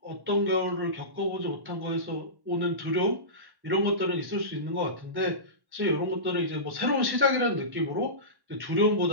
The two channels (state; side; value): late; left; 1.1 ms